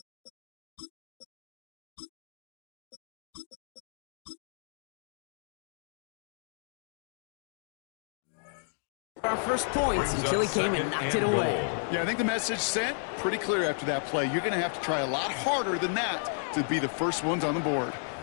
Our first points until he came and knocked it away. Yeah, I think the message sent pretty clear after that play. You're going to have to try a lot harder than that to be the first ones on the board.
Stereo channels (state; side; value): silent; right; digital silence